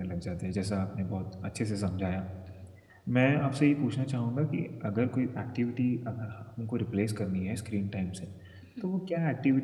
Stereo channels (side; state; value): both; identical; correlation 1.00